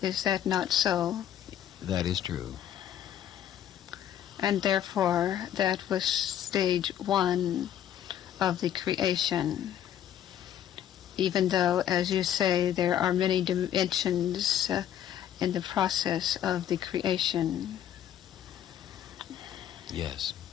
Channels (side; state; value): right; quieter; 10.6 dB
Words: Is that not so? That is true. And therefore, that was stage one of the creation. Even though, as you say, there are many dimensions in the process of the creation. Yes.